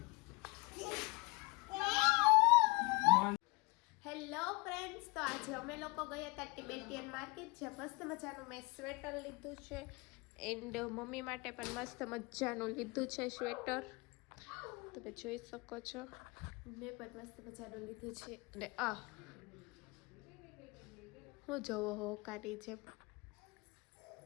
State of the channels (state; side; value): quieter; right; 26.2 dB